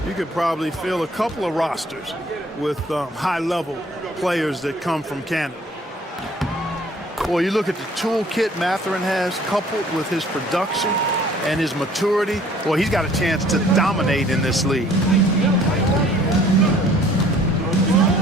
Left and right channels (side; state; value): both; normal; correlation 0.56